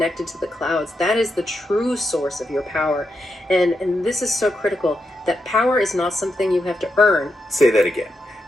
to the clouds. That is the true source of your power. And this is so critical, that power is not something you have to earn. Say that again,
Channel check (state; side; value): normal; both; correlation 0.84